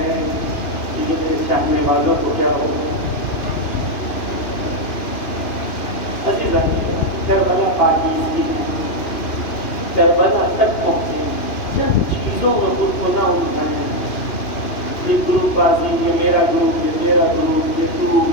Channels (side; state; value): right; late; 2.9 ms